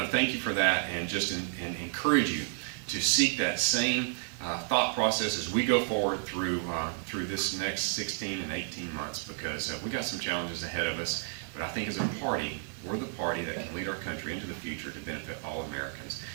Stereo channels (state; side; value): silent; left; 57 dB below the other